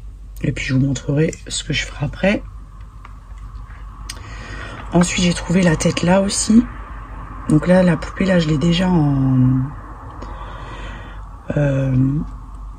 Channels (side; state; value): both; identical; correlation 1.00